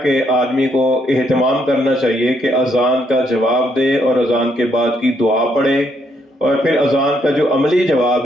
کہ آدمی کو اہتمام کرنا چاہیے کہ اذان کا جواب دے اور اذان کے بعد کی دعا پڑھے، اور پھر اذان کا جو عملی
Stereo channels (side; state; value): both; normal; correlation 0.73